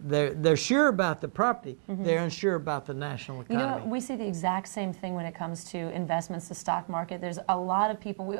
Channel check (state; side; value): silent; left; digital silence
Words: They're sure about the property. They're unsure about the national economy. You know what? We see the exact same thing when it comes to investments, the stock market. There's a lot of people.